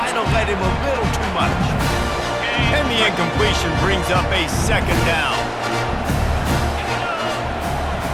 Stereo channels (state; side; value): identical; both; correlation 1.00